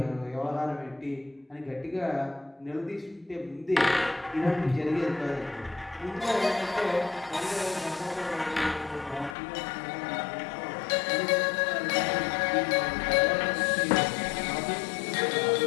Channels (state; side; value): drops out; right; at 9.3 s